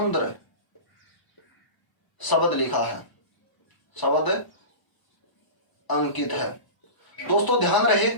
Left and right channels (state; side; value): late; right; 1.0 ms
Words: शब्द लिखा है, शब्द अंकित है। दोस्तों ध्यान रहे,